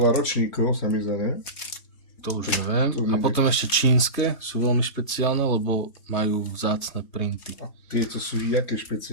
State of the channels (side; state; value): right; late; 3.2 ms